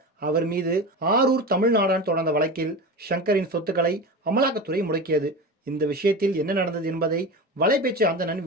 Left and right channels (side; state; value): both; normal; correlation 0.27